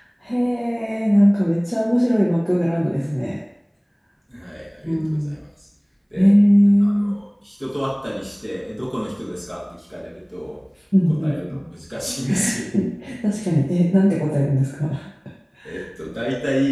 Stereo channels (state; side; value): identical; both; correlation 1.00